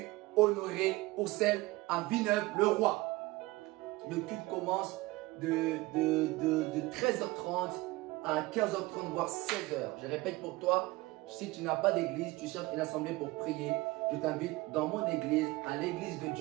Honoré Oursel à Villeneuve-le-Roi. Le culte commence de 13h30 à 15h30, voire 16h. Je répète pour toi, si tu n'as pas d'église, tu cherches une assemblée pour prier, je t'invite dans mon église, à l'église de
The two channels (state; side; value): quieter; left; 20.5 dB